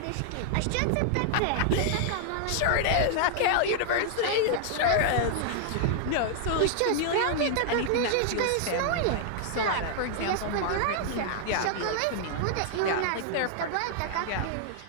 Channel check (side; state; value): both; different; correlation -0.01